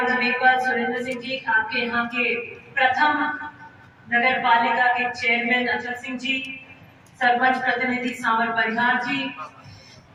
जी मेघवाल, सुरेंद्र सिंह जी, आपके यहाँ के प्रथम नगर पालिका के चेयरमैन अचल सिंह जी, सरपंच प्रतिनिधि सांवर परिहार जी,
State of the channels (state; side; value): identical; both; correlation 1.00